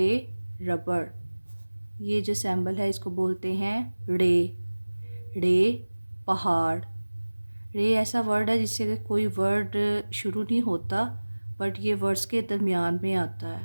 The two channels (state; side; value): inverted; both; correlation -1.00